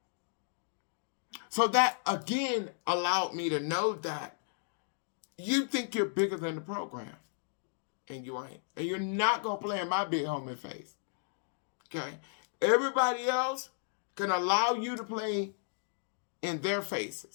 So that, again, allowed me to know that you think you're bigger than the program. And you ain't. And you're not going to play in my big homie face. Okay? Everybody else can allow you to play in their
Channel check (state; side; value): silent; right; digital silence